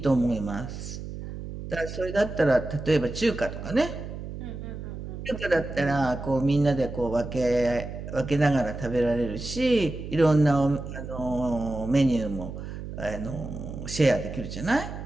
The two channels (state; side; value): noise; right; hum, 9 dB below the sound